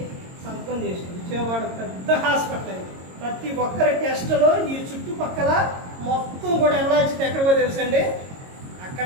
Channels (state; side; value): late; left; 22 ms